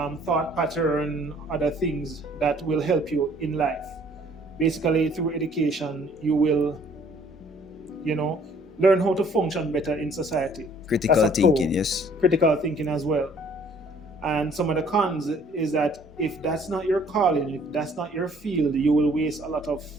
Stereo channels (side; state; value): both; normal; correlation 0.58